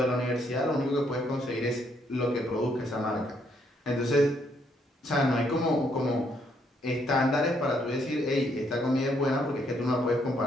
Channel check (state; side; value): normal; both; correlation 0.72